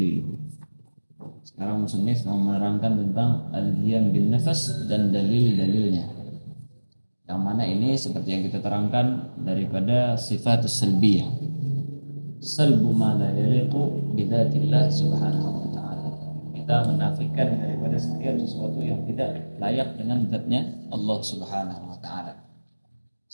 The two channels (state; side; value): inverted; both; correlation -1.00